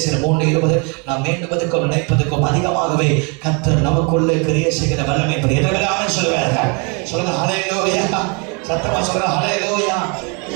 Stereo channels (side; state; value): left; quieter; 33.2 dB